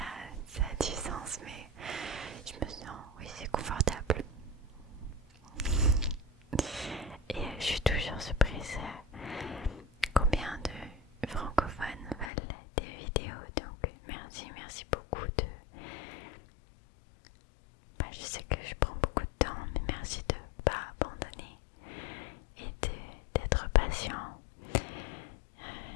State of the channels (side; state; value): right; drops out; at 12.3 s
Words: a du sens, mais je me sens, oui, c'est confortable. Et je suis toujours surprise combien de francophones veulent des vidéos. Donc merci beaucoup de... je sais que je prends beaucoup de temps, mais merci de ne pas abandonner et d'être patient.